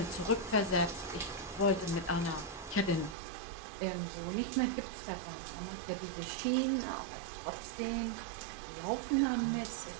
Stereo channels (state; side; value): drops out; left; at 3.2 s